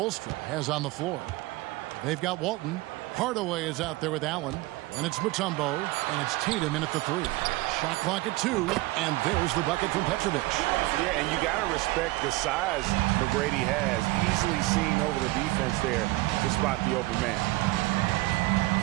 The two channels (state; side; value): quieter; left; 20.8 dB